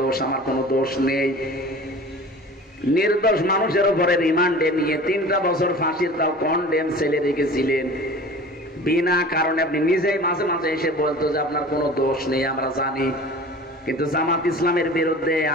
আমার কোনো দোষ নেই। নির্দোষ মানুষের উপরে রিমান্ডে নিয়ে 3টা বছর ফাঁসির তাও কন্ডেম ছেলে রেখেছিলেন বিনা কারণে। আপনি নিজেই মাঝে মাঝে এসে বলতো যে আপনার কোনো দোষ নেই, আমরা জানি, কিন্তু জামাত ইসলামের বিরুদ্ধে,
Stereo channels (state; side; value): normal; both; correlation 0.40